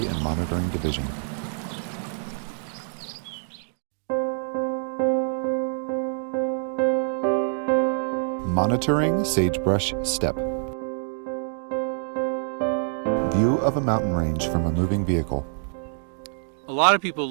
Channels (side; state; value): left; silent; digital silence